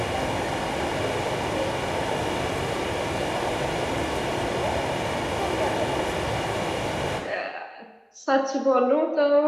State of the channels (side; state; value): both; identical; correlation 1.00